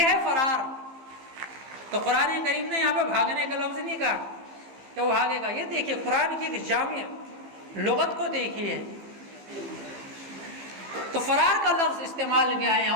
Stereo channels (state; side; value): late; left; 15 ms